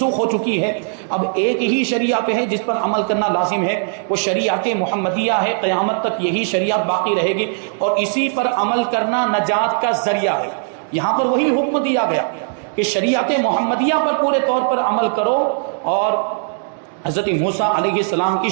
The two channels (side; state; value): left; silent; digital silence